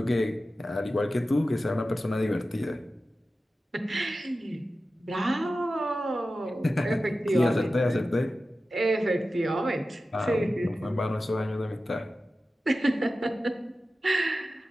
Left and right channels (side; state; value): both; normal; correlation 0.94